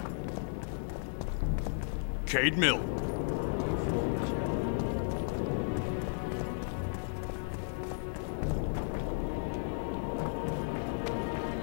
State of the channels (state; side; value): silent; right; digital silence